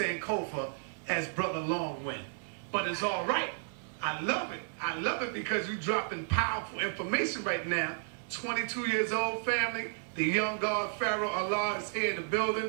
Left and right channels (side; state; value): left; silent; digital silence